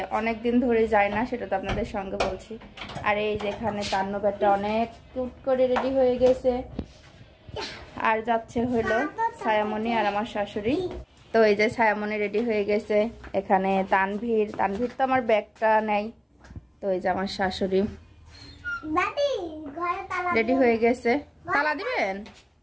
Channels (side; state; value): both; identical; correlation 1.00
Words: অনেক দিন ধরে যাই না, সেটা তো আপনাদের সঙ্গে বলছি। আর এই যেখানে তান্নবেরটা অনেক কিউট করে রেডি হয়ে গেছে, আর যাচ্ছে হলো ছায়ামণি আর আমার শাশুড়ি। তো এই যে ছায়ামণি রেডি হয়ে গেছে, এখানে তানভীর তো আমার ব্যাগটা নেই। তো এই যে আমার শাশুড়ি রেডি হয়ে গেছে। তালা দিবেন?